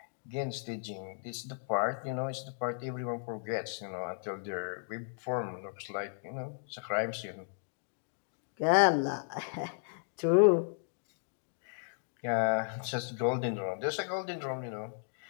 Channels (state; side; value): silent; right; digital silence